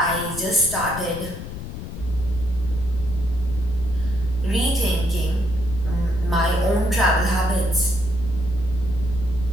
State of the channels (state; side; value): noise; left; rumble, 9 dB below the sound